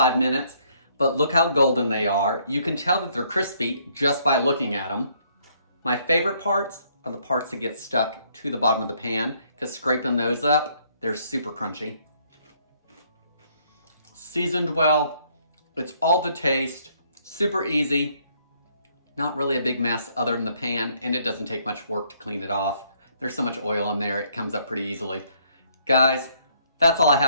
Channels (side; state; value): both; inverted; correlation -0.67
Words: minutes, but look how golden they are. You can tell that they're crispy just by looking at them. My favorite parts are the parts that get stuck to the bottom of the pan, because scraping those up, they're super crunchy. Seasoned well, it's all to taste, super easy, not really a big mess other than the pan, and it doesn't take much work to clean it off. There's so much oil in there, it comes up pretty easily. Guys, that's all I